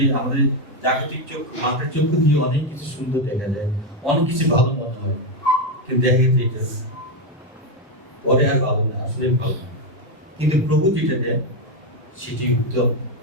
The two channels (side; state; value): both; normal; correlation 0.06